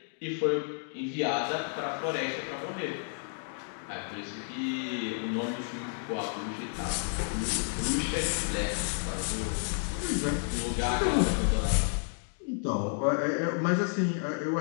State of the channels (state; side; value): silent; right; 57 dB below the other